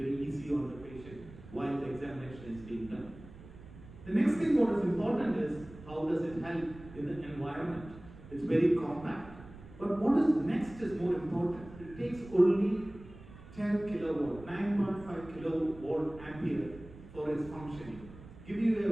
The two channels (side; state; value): right; noise; rumble, 18 dB below the sound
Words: easy on the patient while the examination is being done. The next thing what is important is how does it help in the environment. It's very compact. But what is next is more important. It takes only 10 kilowatt, 9.5 kilowatt ampere for its functioning. Give you